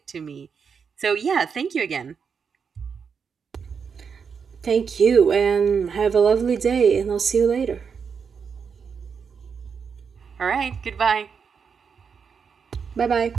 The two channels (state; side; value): quieter; left; 6.2 dB